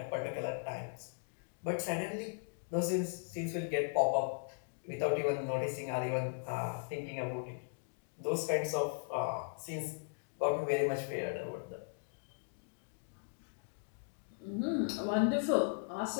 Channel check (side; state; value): right; silent; digital silence